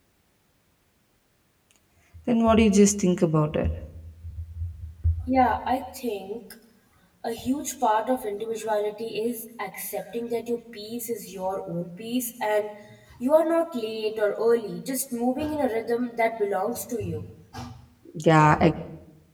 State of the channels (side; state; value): both; identical; correlation 1.00